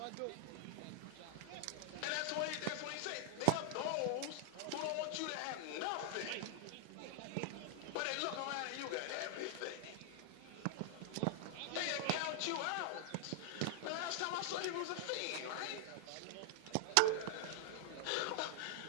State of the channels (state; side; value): different; both; correlation 0.00